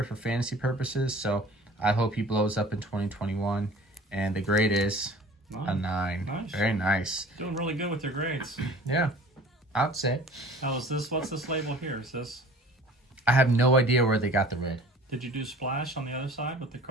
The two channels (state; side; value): normal; both; correlation 0.46